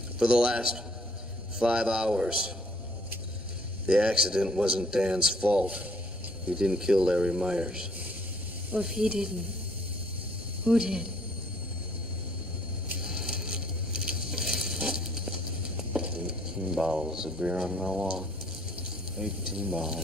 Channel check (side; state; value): both; normal; correlation 0.62